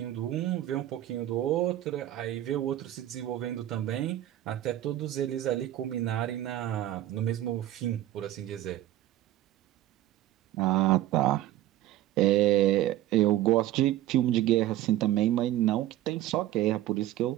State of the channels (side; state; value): left; quieter; 13.7 dB